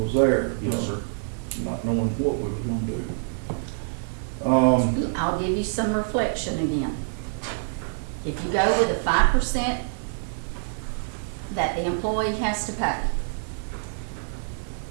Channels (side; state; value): left; silent; digital silence